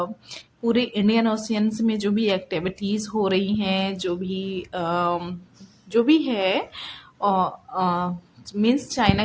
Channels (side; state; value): both; identical; correlation 1.00